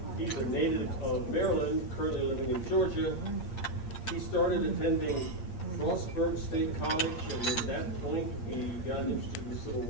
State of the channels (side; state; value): right; late; 8.6 ms